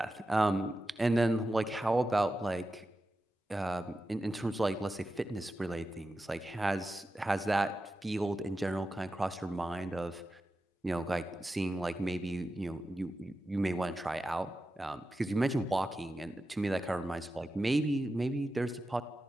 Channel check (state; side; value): normal; both; correlation 0.91